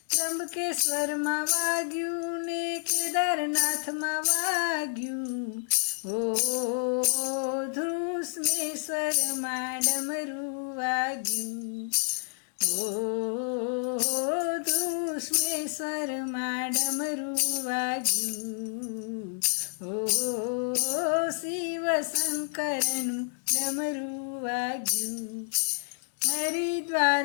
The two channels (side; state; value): right; silent; 58 dB below the other